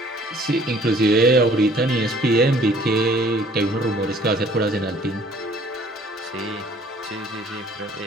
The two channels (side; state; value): both; normal; correlation 0.57